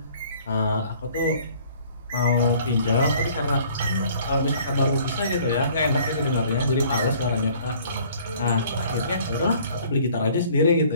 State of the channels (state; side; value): inverted; both; correlation -0.55